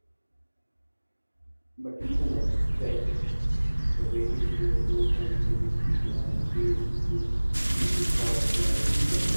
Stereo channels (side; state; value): both; inverted; correlation -1.00